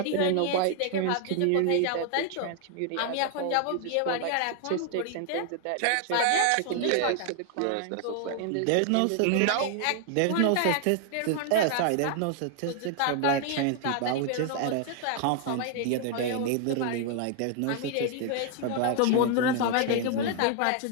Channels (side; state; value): both; different; correlation 0.00